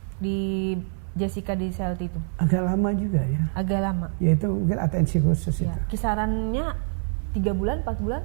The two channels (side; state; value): left; silent; 61 dB below the other